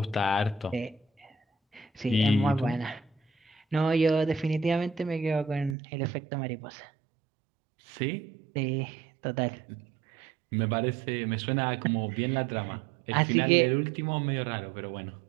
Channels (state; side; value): drops out; left; at 5.8 s